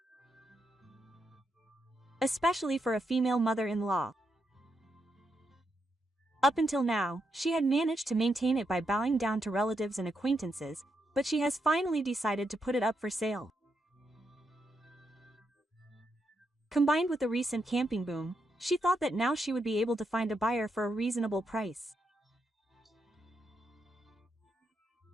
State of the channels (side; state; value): both; normal; correlation 0.82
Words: Especially for a female mother-in-law. Up until now, she had managed to maintain it by bowing down to relatives and acquaintances, but she has finally decided to put it up for sale. Combined with the recent camping boom, she thought that now she would be able to find a buyer for a reasonable price.